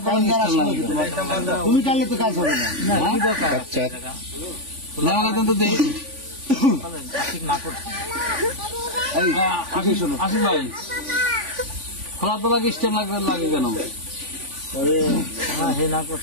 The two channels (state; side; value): late; left; 3.5 ms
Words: তুমি টানলে তো কাজ হবে না আশিক ভাই খোলা তোলা কি স্টেম লাগে কেন?